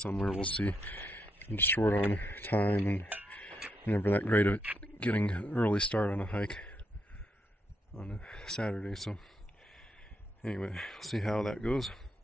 We'll see. I'm just short on time and never that great at getting an early start on a hike on a Saturday. So anyway, we'll see how that goes.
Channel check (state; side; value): normal; both; correlation 0.79